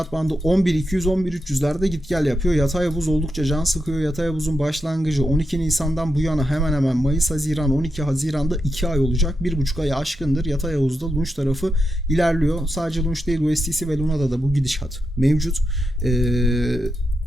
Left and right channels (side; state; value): both; normal; correlation 0.86